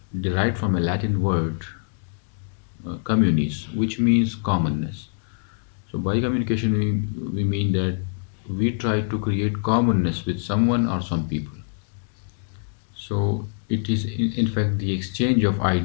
derived from a Latin word, communis, which means commonness. So, by communication, we mean that we try to create commonness with someone or some people. So it is in fact the exchange of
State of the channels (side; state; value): right; silent; digital silence